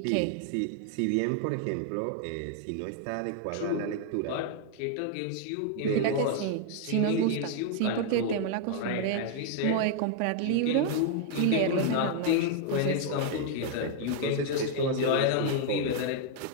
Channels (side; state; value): both; different; correlation 0.00